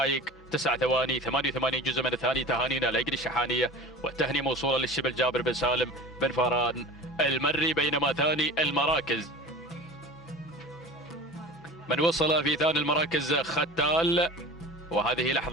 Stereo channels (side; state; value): both; normal; correlation 0.37